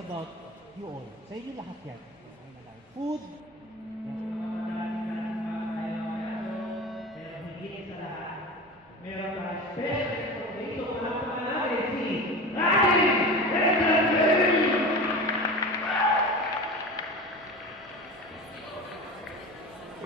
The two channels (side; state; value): both; normal; correlation 0.31